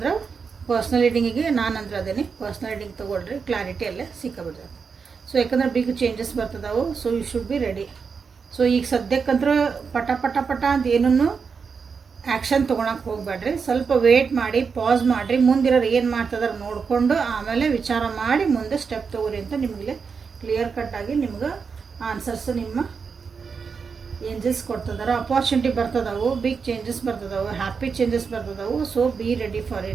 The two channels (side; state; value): left; quieter; 5.6 dB